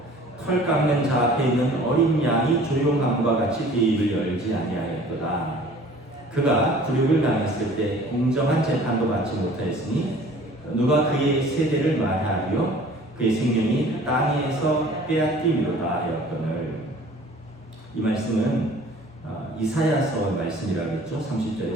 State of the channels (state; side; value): normal; both; correlation 0.49